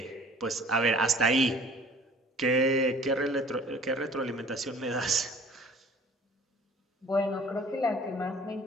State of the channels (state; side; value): normal; both; correlation 0.50